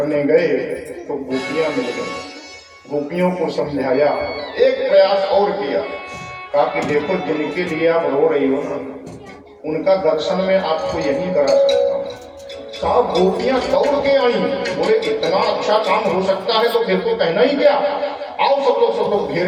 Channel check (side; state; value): both; identical; correlation 1.00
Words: गए तो गोपियां मिल गई। गोपियों को समझाया, एक प्रयास और किया, कहा कि देखो जिनके लिए आप रो रही हो ना, उनका दर्शन में आपको यही करा सकता हूँ। साहब गोपियां दौड़ के आई, बोले इतना अच्छा काम हो सकता है तो फिर तो कहना ही क्या। आओ सब लोग घेर